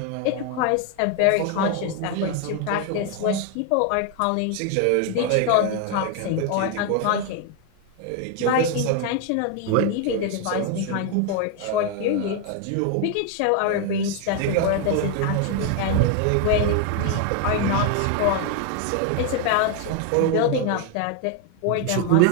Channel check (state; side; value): different; both; correlation 0.01